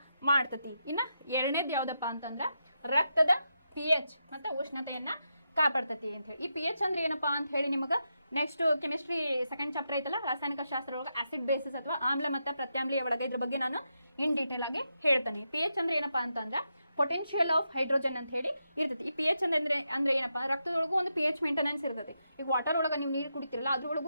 ಮಾಡ್ತೈತಿ. ಇನ್ನ ಎರಡನೇದು ಯಾವ್ದಪ್ಪ ಅಂತಂದ್ರ ರಕ್ತದ pH ಮತ್ತೆ ಉಷ್ಣತೆಯನ್ನ ಕಾಪಾಡ್ತೈತಿ ಅಂತ ಹೇಳಿ. ಈ pH ಅಂದ್ರೆ ಏನಪ್ಪಾ ಅಂತ ಹೇಳಿ ನಿಮಗೆ ನೆಕ್ಸ್ಟ್ ಕೆಮಿಸ್ಟ್ರಿ ಸೆಕೆಂಡ್ ಚಾಪ್ಟರ್ ಐತಲ್ಲ, ರಾಸಾಯನಿಕ ಶಾಸ್ತ್ರ ಒಳಗೆ ಆಸಿಡ್ ಬೇಸಿಸ್ ಅಥವಾ ಆಮ್ಲ ಮತ್ತು ಪ್ರತ್ಯಾಮ್ಲೀಯ ಒಳಗೆ ಇದ್ರ ಬಗ್ಗೆ ನಾನು ಇನ್ ಡೀಟೇಲ್ ಆಗಿ ಹೇಳ್ತೇನೆ. pH ಅಂದ್ರೆ ಏನಪ್ಪಾ ಅಂತಂದ್ರೆ ಪೊಟೆನ್ಷಿಯಲ್ ಆಫ್ ಹೈಡ್ರೋಜನ್ ಅಂತ ಹೇಳಿ ಇರ್ತೈತಿ. ಈ pH ಅಂದ್ರೆ ಏನಪ್ಪಾ, ರಕ್ತದೊಳಗೂ ಒಂದು pH ಮೇಂಟೆನೆನ್ಸ್ ಇರ್ತೈತಿ. ಈಗ ವಾಟರ್ ಒಳಗೆ ನೀವು ನೀರು ಕುಡಿತಿರಲ್ಲ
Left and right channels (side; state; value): both; inverted; correlation -0.85